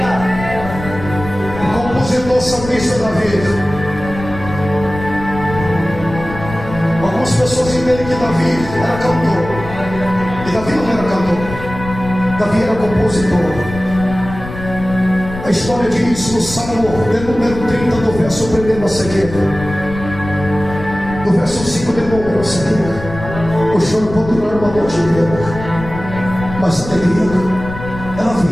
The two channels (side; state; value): left; noise; rumble, 11 dB below the sound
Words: Compositor salmista Davi. Algumas pessoas entendem que Davi era cantor, e Davi não era cantor, Davi era compositor. A história diz no Salmo de número 30, do verso 1 a seguir, do verso 5 de número a seguir: o choro pode durar uma noite inteira, mas a alegria ela